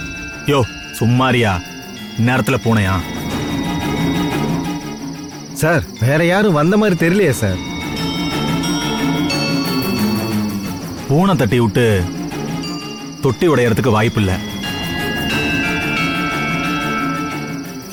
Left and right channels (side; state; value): both; identical; correlation 1.00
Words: யோ சும்மாரியா, இந்நேரத்துல பூனையா? சார் வேற யாரும் வந்த மாதிரி தெரியலையே சார். பூனை தட்டி விட்டு தொட்டி உடையறதுக்கு வாய்ப்பு இல்ல.